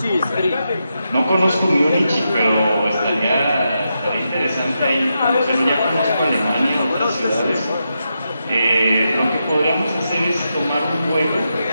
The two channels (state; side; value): inverted; both; correlation -0.85